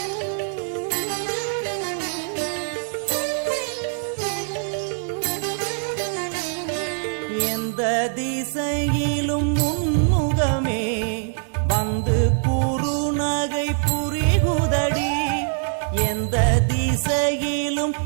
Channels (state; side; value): silent; left; 63 dB below the other